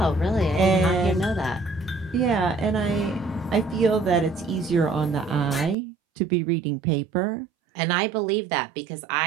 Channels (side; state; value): left; drops out; at 5.8 s